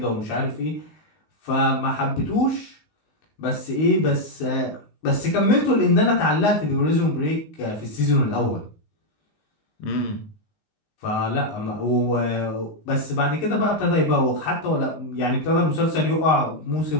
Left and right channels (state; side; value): late; right; 19 ms